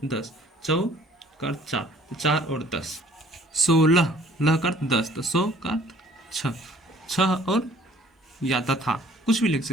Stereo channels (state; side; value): normal; both; correlation 0.56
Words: 10, चौ का अर्थ 4, तो 4 और 10। 16, लह का अर्थ 10, तो 100 का अर्थ 6, 6 और या तथा, कुछ भी लिख